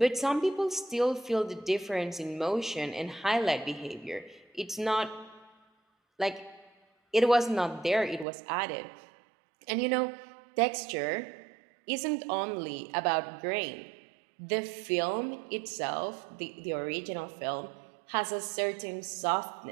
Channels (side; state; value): left; drops out; at 8.2 s